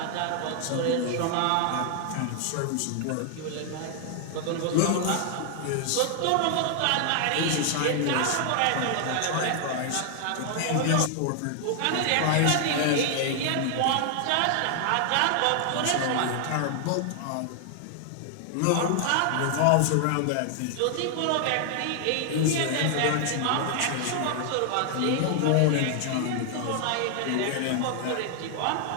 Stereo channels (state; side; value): different; both; correlation 0.00